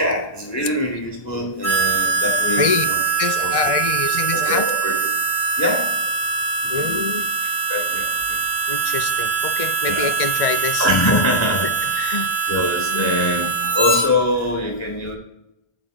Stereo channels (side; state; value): right; late; 1.6 ms